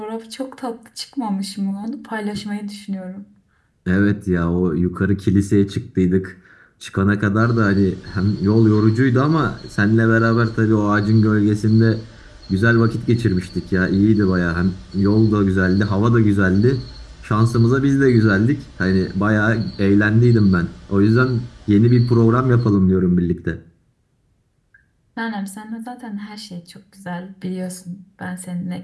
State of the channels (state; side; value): identical; both; correlation 1.00